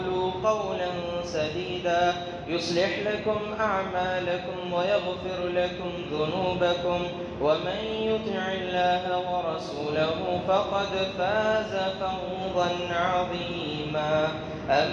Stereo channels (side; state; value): both; identical; correlation 1.00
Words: قولا سديدا يصلح لكم أعمالكم ويغفر لكم ذنوبكم، ومن يطع الله ورسوله فقد فاز فوزا عظيما.